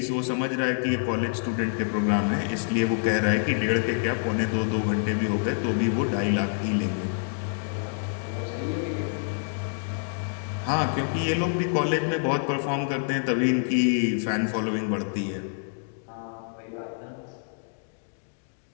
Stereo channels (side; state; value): right; silent; digital silence